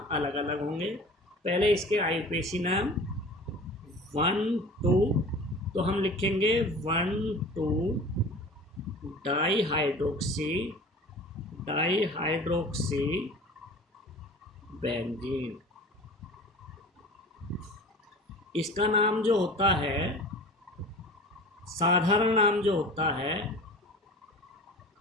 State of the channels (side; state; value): both; normal; correlation 0.39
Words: अलग अलग होंगे। पहले इसके आईयूपीएसी नाम 1 2, तो हम लिखेंगे 1 2 डाईहाइड्रोक्सी बेंजीन। इसका नाम जो होता है, साधारण नाम जो होता है